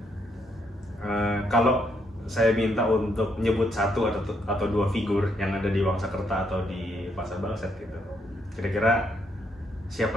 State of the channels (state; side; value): normal; both; correlation 0.74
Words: kalau saya minta untuk nyebut satu atau dua figur yang ada di Wangsakerta atau di Pasar Bangsat gitu, kira-kira